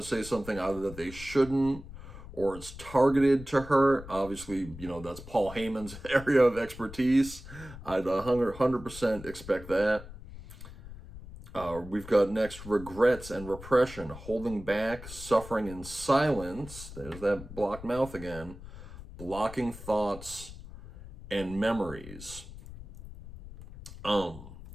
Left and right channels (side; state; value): left; noise; rumble, 14 dB below the sound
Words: to say something either that they shouldn't, or it's targeted to hurt. Obviously, that's Paul Heyman's area of expertise. I'd 100% expect that. We've got next regrets and repression, holding back, suffering in silence. There's that blocked mouth again. Blocking thoughts and memories.